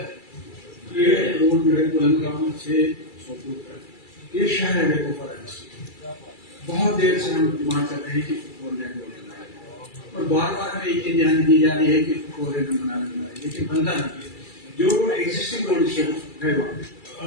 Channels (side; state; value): right; late; 2.3 ms